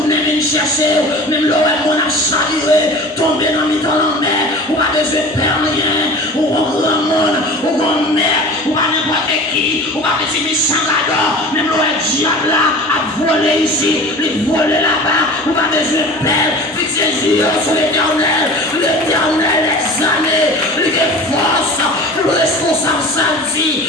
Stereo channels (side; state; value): both; normal; correlation 0.38